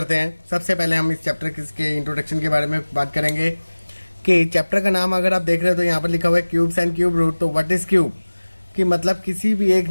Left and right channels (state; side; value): inverted; both; correlation -1.00